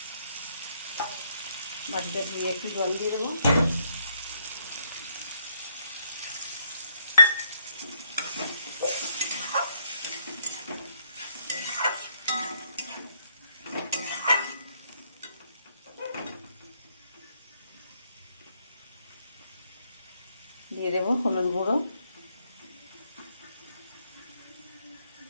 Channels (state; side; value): inverted; both; correlation -0.73